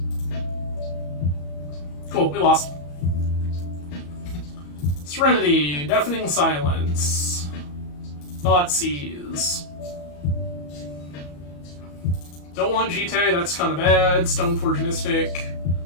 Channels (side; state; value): right; late; 34 ms